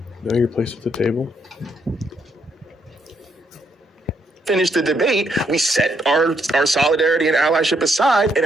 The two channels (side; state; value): both; normal; correlation 0.74